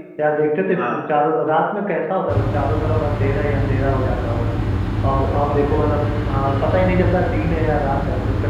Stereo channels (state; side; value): identical; both; correlation 1.00